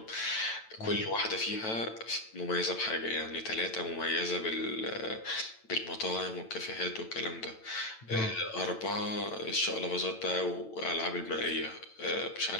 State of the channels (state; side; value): late; right; 9.0 ms